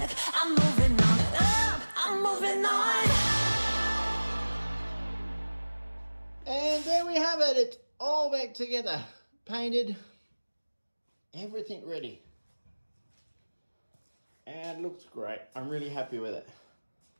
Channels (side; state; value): both; inverted; correlation -1.00